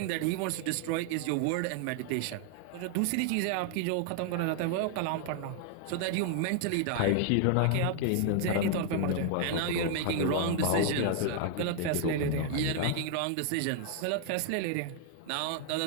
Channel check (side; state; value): both; different; correlation 0.00